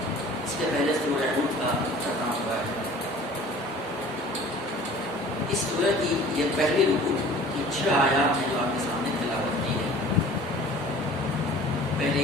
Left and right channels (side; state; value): both; normal; correlation 0.46